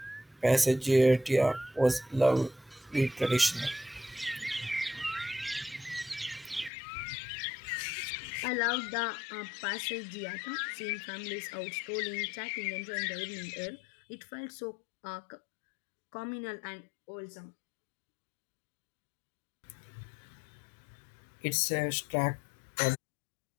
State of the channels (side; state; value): right; drops out; at 6.7 s